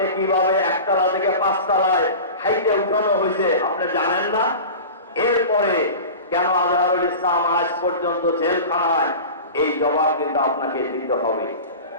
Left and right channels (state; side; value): inverted; both; correlation -0.33